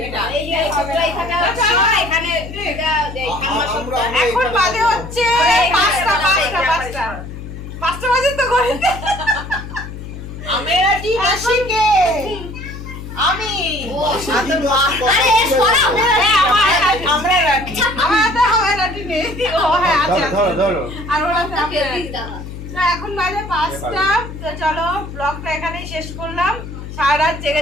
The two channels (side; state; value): left; noise; hum, 11 dB below the sound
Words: টান। এখন বাজে হচ্ছে 5টা বাজে তো ঘড়িতে। আমেরা কি মাসিকে আমি আরে সরাও না। আমরা রাখি। আমার হাতে হবে না ঠিক নেই। ও হ্যাঁ আছে আছে। ধরো আর ওর হাতে আছে। তো এখন বাজে 5টা। তো চলো ব্লগটা এখানেই শেষ করলাম। সারা রাত